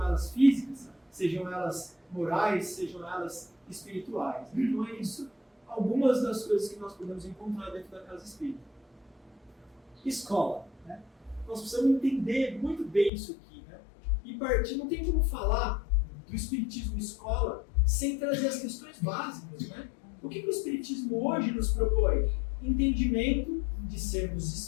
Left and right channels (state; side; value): drops out; right; at 13.1 s